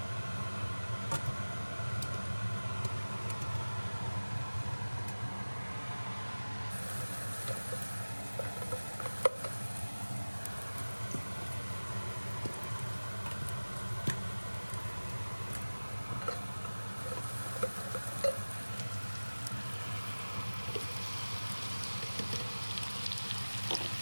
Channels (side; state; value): both; inverted; correlation -1.00